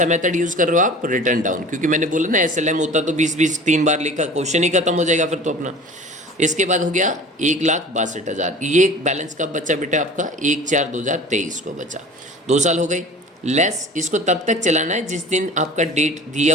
मेथड यूज़ कर रहे हो आप, रिटर्न डाउन, क्योंकि मैंने बोला ना एसएलएम होता तो 20-20 3 बार लिखा, क्वेश्चन ही खत्म हो जाएगा फिर तो अपना। इसके बाद हो गया 1,62,000। ये बैलेंस कब बचा बेटा आपका? 1/4/2023 को बचा। 2 साल हो गई। लेस इसको तब तक चलाना है जिस दिन आपका डेट दिया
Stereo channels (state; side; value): normal; both; correlation 0.42